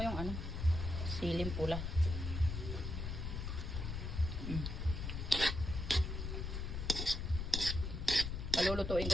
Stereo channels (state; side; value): noise; left; rumble, 3 dB below the sound